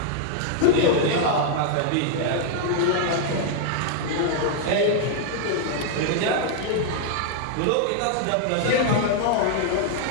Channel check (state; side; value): different; both; correlation -0.01